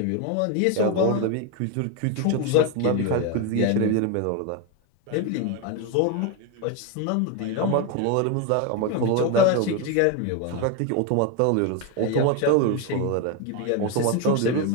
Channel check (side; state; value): both; different; correlation 0.02